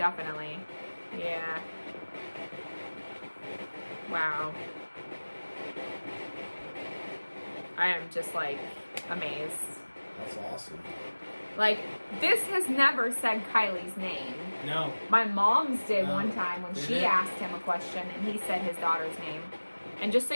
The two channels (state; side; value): inverted; both; correlation -1.00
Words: Yeah. Wow. I am just like amazed. That's awesome. Like, this has never said Kylie's name. No. My mom's did No. one time when Did she it? asked him a question and he said his daughter's name. And just so